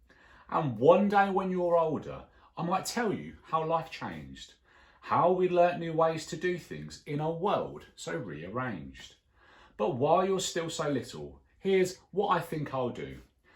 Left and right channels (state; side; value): identical; both; correlation 1.00